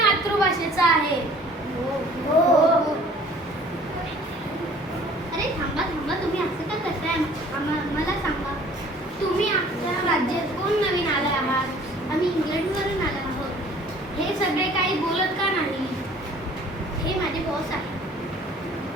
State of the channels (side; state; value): both; normal; correlation 0.52